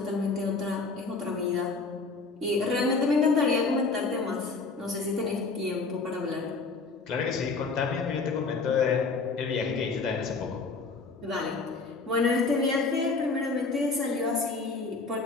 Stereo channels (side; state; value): right; quieter; 4.1 dB